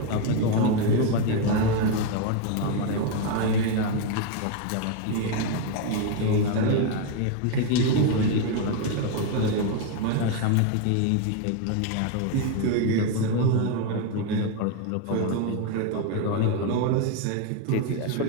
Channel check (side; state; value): both; different; correlation 0.01